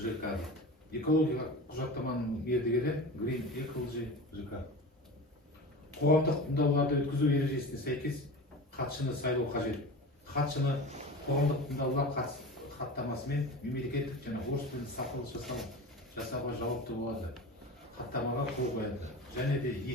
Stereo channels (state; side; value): normal; both; correlation 0.31